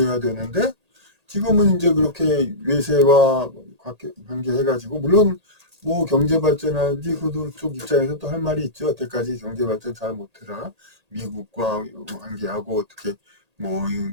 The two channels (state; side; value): late; left; 1.8 ms